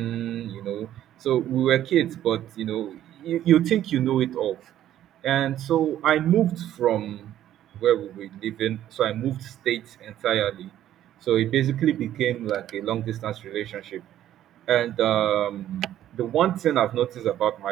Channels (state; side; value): quieter; left; 12.0 dB